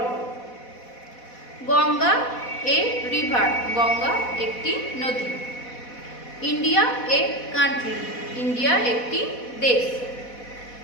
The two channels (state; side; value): late; right; 4.1 ms